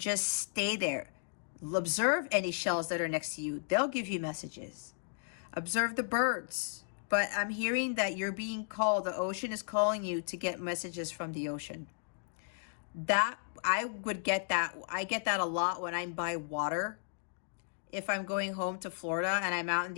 stay there. Observe any shells that are next to you. They'll give you messages. Observe the birds. But I'm hearing that you're being called, the ocean is calling you to get messages from the ocean. That, I would get that. I get that a lot when I'm by water. If I'm going home to Florida and I'm out in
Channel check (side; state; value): right; silent; digital silence